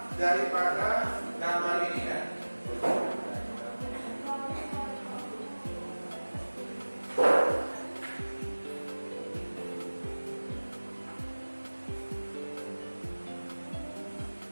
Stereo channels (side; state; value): both; inverted; correlation -1.00